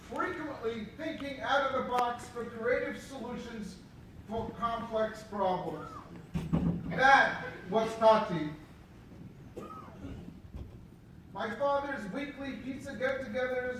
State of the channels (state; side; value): identical; both; correlation 1.00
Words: frequently thinking out of the box for creative solutions for complex problems. That was Tati. My father's weekly pizza